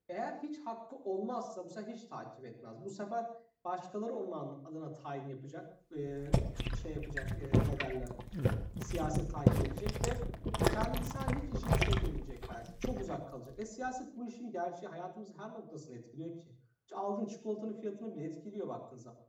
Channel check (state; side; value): identical; both; correlation 1.00